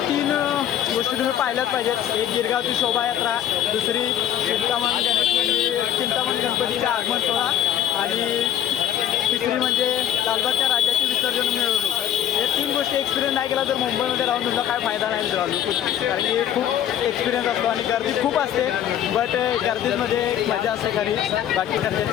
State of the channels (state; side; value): quieter; right; 10.6 dB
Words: 3 गोष्टी तुम्ही पाहिल्याच पाहिजेत. एक गिरगावची शोभायात्रा, दुसरी चिंतामणी गणपतीचं आगमन सोहळा आणि तिसरी म्हणजे लालबागच्या राजाची विसर्जन मिळवणूक. हे 3 गोष्टी एक्सपिरियन्स नाही केला तर मुंबईमध्ये राहून तुमचा काय फायदा नाही मित्रांनो. कारण की खूप एक्सपिरियन्स असतो आणि गर्दी खूप असते. बट गर्दीमध्ये मजा असते घरी. बाकी करते